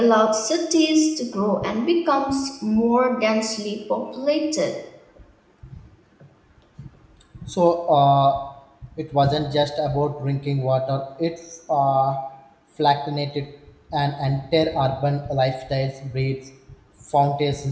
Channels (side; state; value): both; identical; correlation 1.00